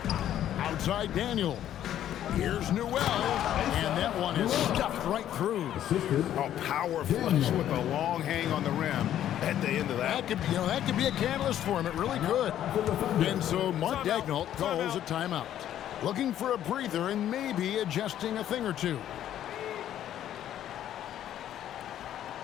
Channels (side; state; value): right; quieter; 11.3 dB